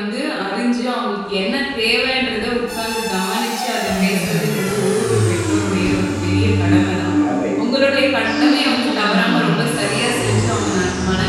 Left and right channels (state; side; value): identical; both; correlation 1.00